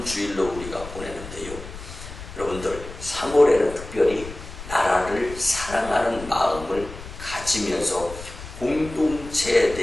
우리가 보내는데요. 여러분들, 3월에는 특별히 나라를 사랑하는 마음을 가지면서 공동체에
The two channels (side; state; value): left; noise; rumble, 13 dB below the sound